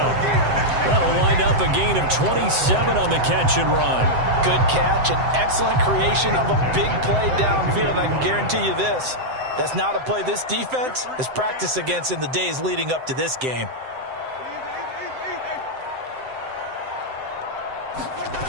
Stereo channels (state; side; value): late; left; 7.8 ms